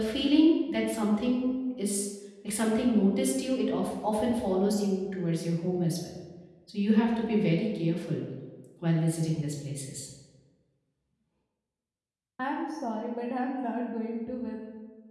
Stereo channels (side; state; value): both; identical; correlation 1.00